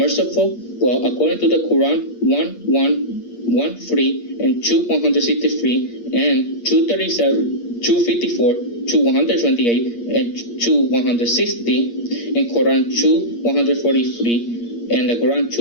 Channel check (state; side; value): late; right; 8.6 ms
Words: Well, according to the Quran 1:1:1:3 and 2:163 and 2:37, 2:54, 2:128 and 2:160, in Quran 2:143, and the Quran